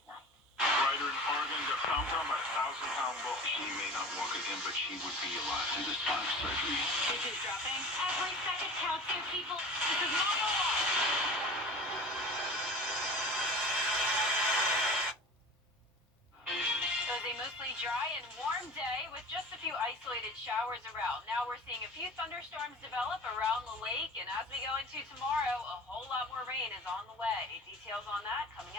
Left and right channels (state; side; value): normal; both; correlation 0.38